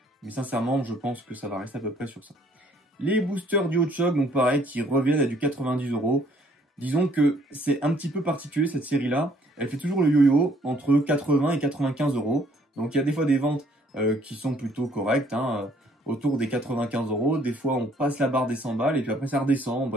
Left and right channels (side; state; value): both; normal; correlation 0.63